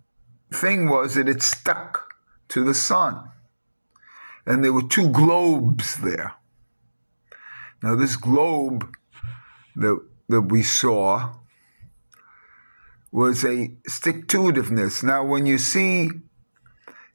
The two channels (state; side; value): inverted; both; correlation -1.00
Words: thing was that it stuck to the sun. And there were two globes there. Now this globe that we saw was a stick-to-itiveness. Now when you see